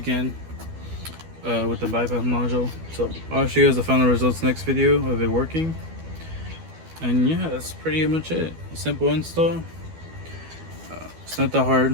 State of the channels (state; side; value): late; left; 12 ms